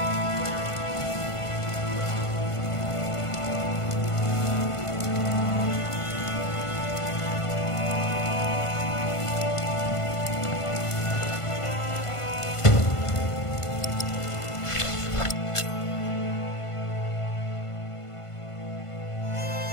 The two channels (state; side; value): late; right; 1.5 ms